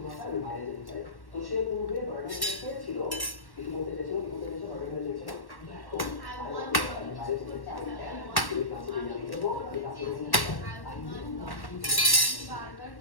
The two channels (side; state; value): right; late; 1.1 ms